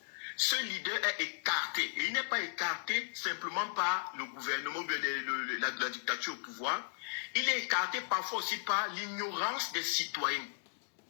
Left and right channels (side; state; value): right; silent; digital silence